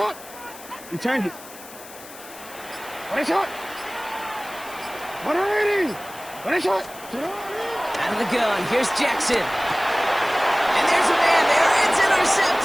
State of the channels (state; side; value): noise; left; hiss, 17 dB below the sound